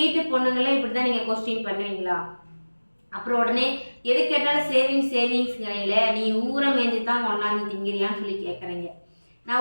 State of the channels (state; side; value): inverted; both; correlation -1.00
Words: பொண்ணுங்களே இப்படி தான் நீங்கள் கொஸ்டின் பண்ணுவீங்களா? அப்புறம் உடனே எது கேட்டாலும் சேவிங்ஸ்ங்கிறீங்களே, நீ ஊரை மேய்ஞ்சி தான் கொண்டாந்து திங்கிறியான்னு சொல்லி கேட்குறீங்க.